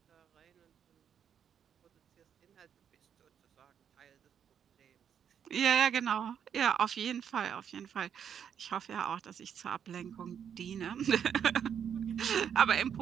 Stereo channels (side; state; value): left; quieter; 8.3 dB